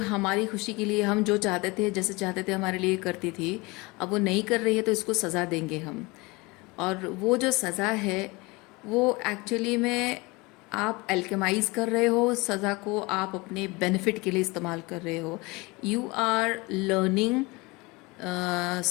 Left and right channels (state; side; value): quieter; right; 24.6 dB